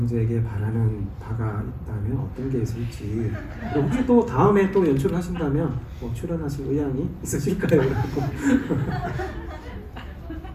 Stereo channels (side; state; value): both; identical; correlation 1.00